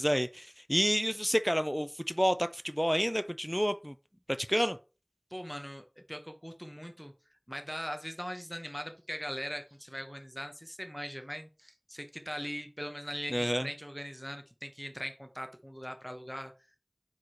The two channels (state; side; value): identical; both; correlation 1.00